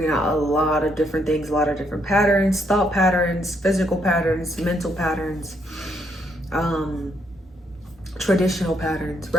out a lot of different things, a lot of different patterns, thought patterns, physical patterns, mental patterns, traditional patterns,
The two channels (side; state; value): both; normal; correlation 0.74